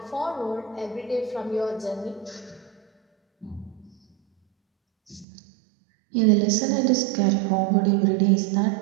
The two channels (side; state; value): left; drops out; at 5.2 s